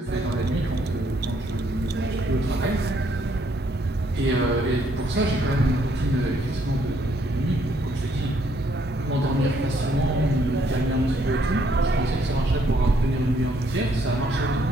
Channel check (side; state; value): both; normal; correlation 0.69